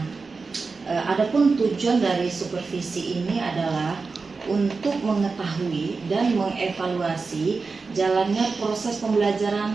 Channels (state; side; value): quieter; left; 4.4 dB